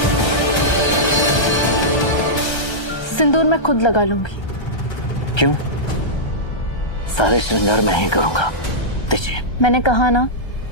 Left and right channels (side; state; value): right; late; 1.3 ms